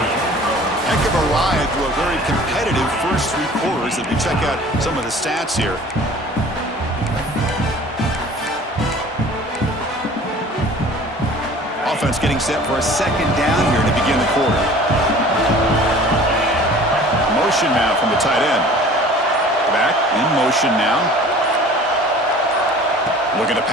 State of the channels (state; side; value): normal; both; correlation 0.46